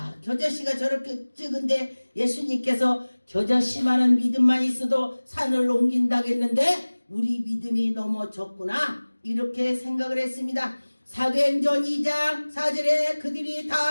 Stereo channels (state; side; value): inverted; both; correlation -1.00